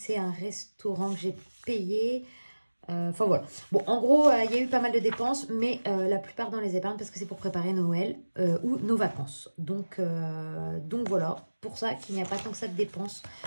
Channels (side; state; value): both; inverted; correlation -1.00